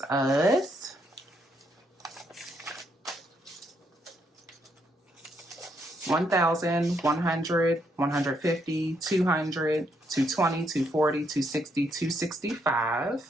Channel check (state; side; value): normal; both; correlation 0.75